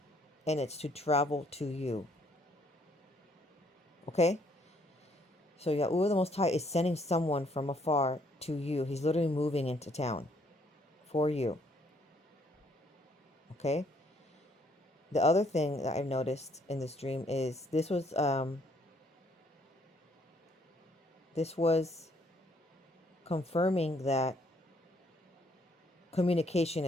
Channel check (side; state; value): both; normal; correlation 0.67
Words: and it's to travel to you. Okay? So Yahuwah the Most High is sending someone from afar to you. He's literally moving into town for you. Okay? The other thing that I've noticed in this dream is this was confirming that communication